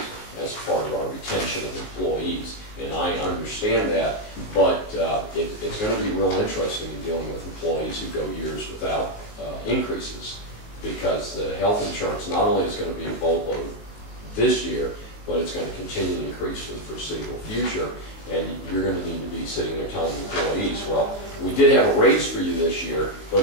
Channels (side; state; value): right; late; 19 ms